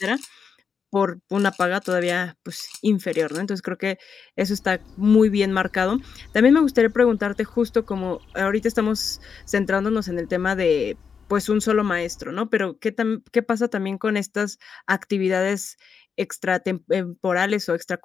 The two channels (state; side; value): quieter; right; 6.3 dB